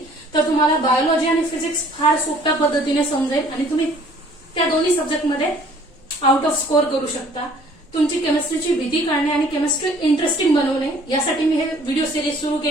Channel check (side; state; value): both; normal; correlation 0.56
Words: तर तुम्हाला बायोलॉजी आणि फिजिक्स फार सोप्या पद्धतीने समजेल आणि तुम्ही त्या दोन्ही सब्जेक्टमध्ये आउट ऑफ स्कोर करू शकता. तुमची केमिस्ट्रीची भीती काढणे आणि केमिस्ट्री इंटरेस्टिंग बनवणे यासाठी मी हे व्हिडिओ सिरीज सुरू